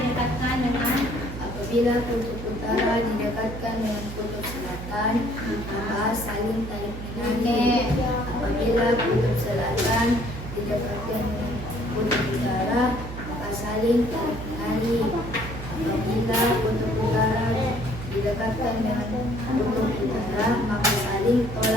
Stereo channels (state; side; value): noise; right; hum, 9 dB below the sound